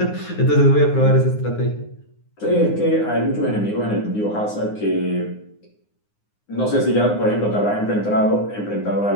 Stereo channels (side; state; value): right; late; 9.7 ms